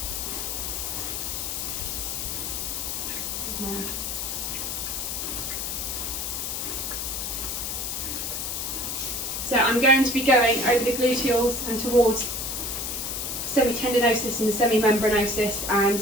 So I'm going to be going over the gluteals and towards semi-tendinosis and the semi-membranosis and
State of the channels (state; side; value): noise; left; hiss, 3 dB below the sound